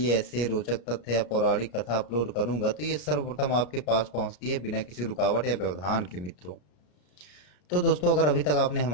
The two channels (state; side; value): late; right; 33 ms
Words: ऐसे रोचक तथ्य या पौराणिक कथा अपलोड करूंगा तो ये सर्वप्रथम आपके पास पहुंचती है बिना किसी रुकावट या व्यवधान के मित्रों। तो दोस्तों, अगर अभी तक आपने